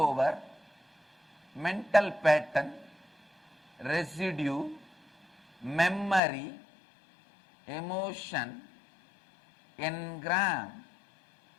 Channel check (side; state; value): right; drops out; at 6.2 s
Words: mental pattern, residue, memory, emotion, engram